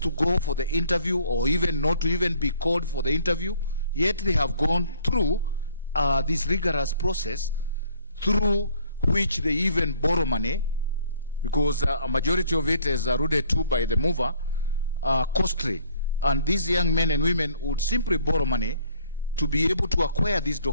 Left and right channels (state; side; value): inverted; both; correlation -0.60